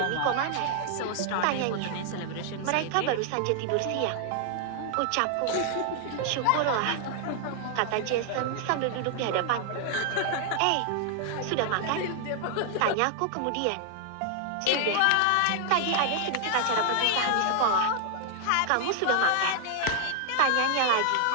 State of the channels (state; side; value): different; both; correlation 0.00